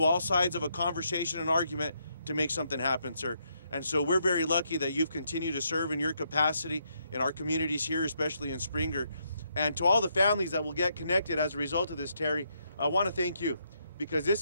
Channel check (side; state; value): both; inverted; correlation -0.76